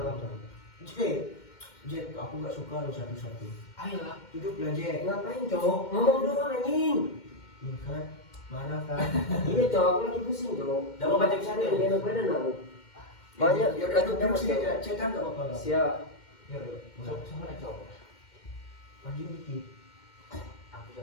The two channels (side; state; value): right; late; 2.1 ms